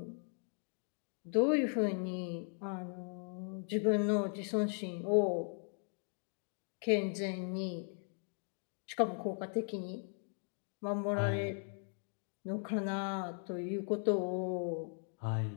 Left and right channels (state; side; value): silent; right; 52 dB below the other